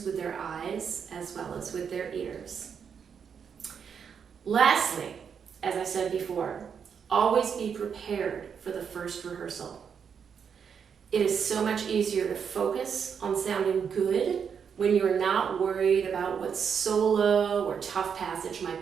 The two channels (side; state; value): left; quieter; 7.0 dB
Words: with their eyes as well as with their ears. Lastly, as I said before, always be prepared for the first rehearsal. It is so much easier to focus on sounding good when you're not worried about what solo or tough passage might